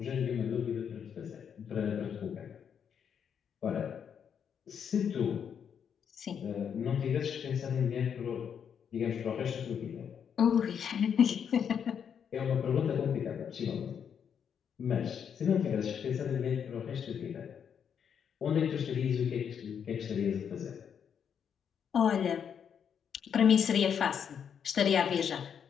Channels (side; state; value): right; quieter; 7.7 dB